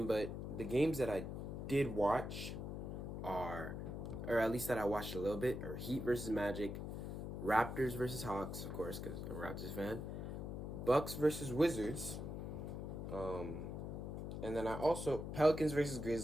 but the games that I did watch are, or at least that I watched a little bit, are Heat versus Magic, Raptors versus Hawks, of course, because I'm a Raptors fan, Bucks versus Wizards, um, and then I also Pelicans versus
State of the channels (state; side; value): noise; left; hum, 5 dB below the sound